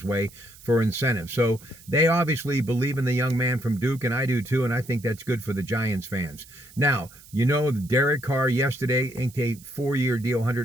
way for incentives. So they obviously believe in the young man from Duke, and I do too, and I think that's good for the Giants fans. Now, Derek Carr yesterday inked a 4-year deal,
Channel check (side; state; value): right; noise; hiss, 22 dB below the sound